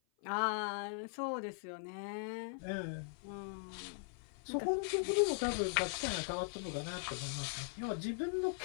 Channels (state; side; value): silent; right; 51 dB below the other